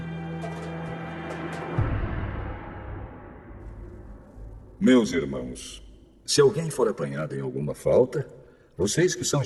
Meus irmãos, se alguém for apanhado em alguma falta, vocês que são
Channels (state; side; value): identical; both; correlation 1.00